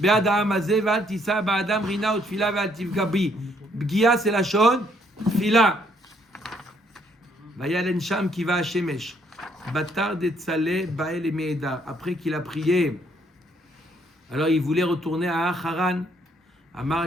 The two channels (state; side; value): normal; both; correlation 0.68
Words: be'ad ha'am hazeh ve'al tisa ba'adam rina utfila ve'al tifga bi. Bgia c'est la shon, tfila. Vayalen sham ki va hashemesh. Batar de tzale ba'el me'edar. Après qu'il a prié, alors il voulait retourner à Haran. Amar